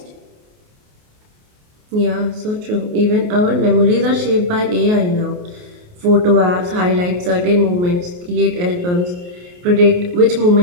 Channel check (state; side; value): late; left; 28 ms